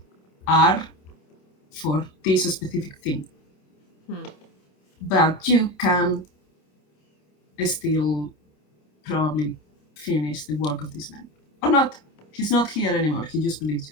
are for this specific thing. But you can still probably finish the work of this man. Or not. He's not here anymore. He just believes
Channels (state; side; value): late; right; 27 ms